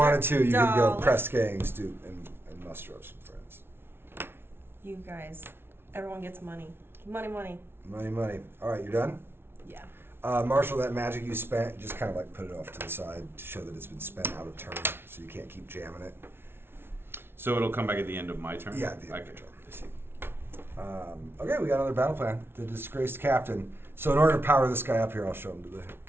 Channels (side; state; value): left; late; 0.11 ms